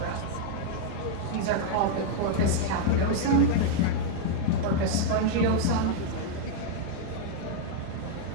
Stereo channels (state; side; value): different; both; correlation 0.00